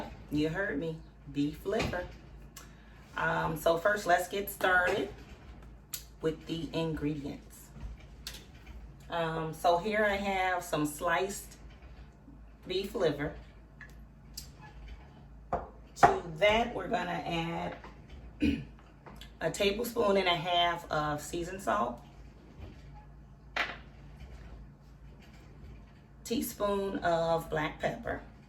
you heard me, beef liver. So first, let's get started with the ingredients. So here I have some sliced beef liver. To that, we're gonna add a tablespoon and a half of seasoned salt, teaspoon of black pepper,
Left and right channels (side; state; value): both; identical; correlation 1.00